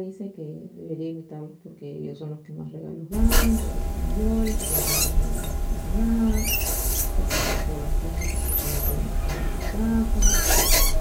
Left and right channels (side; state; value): both; identical; correlation 1.00